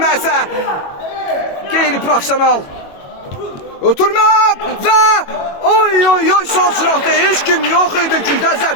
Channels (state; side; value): late; right; 21 ms